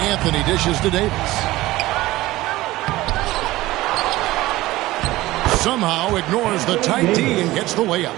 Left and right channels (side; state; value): left; quieter; 17.8 dB